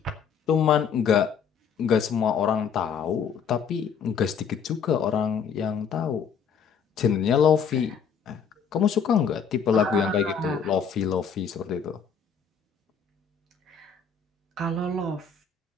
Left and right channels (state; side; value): quieter; right; 6.7 dB